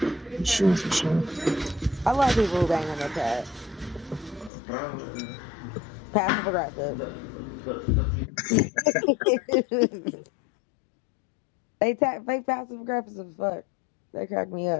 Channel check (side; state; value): right; drops out; at 4.5 s